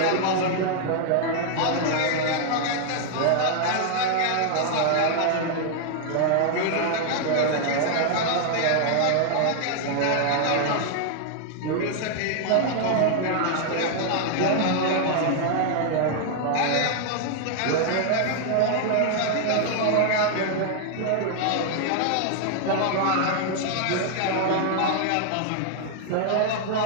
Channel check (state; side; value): different; both; correlation 0.00